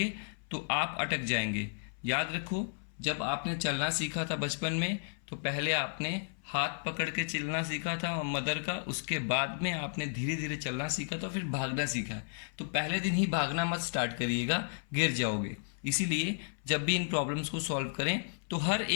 तो आप अटक जाएंगे। याद रखो जब आपने चलना सीखा था बचपन में, तो पहले आपने हाथ पकड़ के चलना सीखा था मदर का, उसके बाद में आपने धीरे धीरे चलना सीखा था, फिर भागना सीखा। तो पहले दिन ही भागना मत स्टार्ट करिएगा, गिर जाओगे। इसीलिए जब भी इन प्रॉब्लम्स को सॉल्व करें तो हर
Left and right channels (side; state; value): right; silent; 56 dB below the other